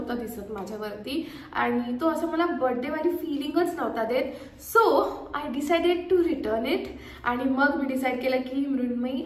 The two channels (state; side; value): identical; both; correlation 1.00